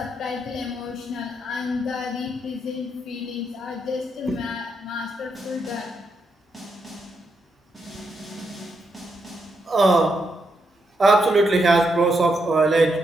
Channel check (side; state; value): both; normal; correlation 0.80